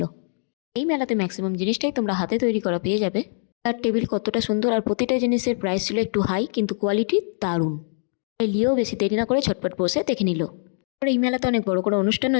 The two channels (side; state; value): right; silent; digital silence